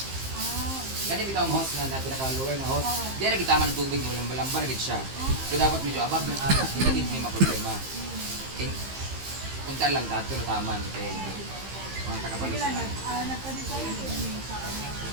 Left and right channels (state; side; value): late; left; 15 ms